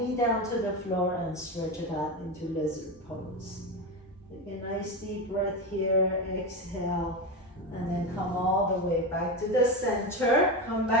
down to the floor and stretch it out into lizard pose. Take a nice deep breath here, exhale, and then come all the way back to the center. Come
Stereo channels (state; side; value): normal; both; correlation 0.18